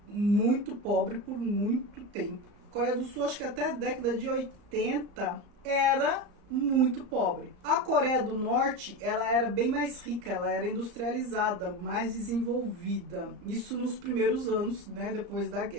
muito pobre por muito tempo. A Coreia do Sul, acho que até a década de 80, era muito pobre. A Coreia do Norte, ela era bem mais rica, ela era industrializada, mais desenvolvida. Isso nos primeiros anos, né, depois da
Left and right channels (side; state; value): left; late; 34 ms